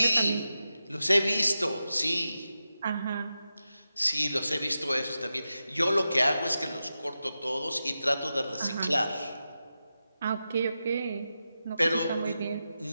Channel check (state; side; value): inverted; both; correlation -0.91